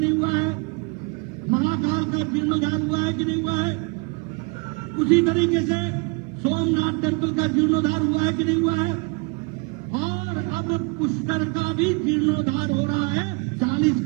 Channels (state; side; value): quieter; left; 30.4 dB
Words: हुआ है? महाकाल का जीर्णोद्धार हुआ है कि नहीं हुआ है? उसी तरीके से सोमनाथ टेम्पल का जीर्णोद्धार हुआ है कि नहीं हुआ है? और अब पुष्कर का भी जीर्णोद्धार हो रहा है। 40